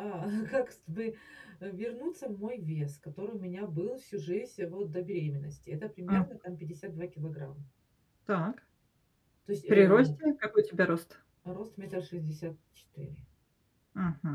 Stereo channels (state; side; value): identical; both; correlation 1.00